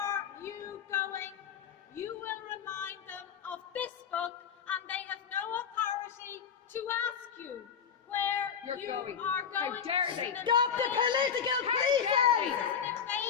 you going? You will remind them of this book, and they have no authority to ask you where you going. are going. How dare they? Stop the political This policing! is an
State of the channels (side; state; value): right; quieter; 7.3 dB